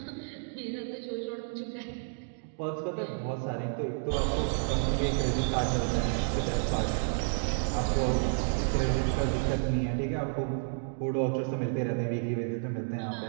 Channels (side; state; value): left; silent; digital silence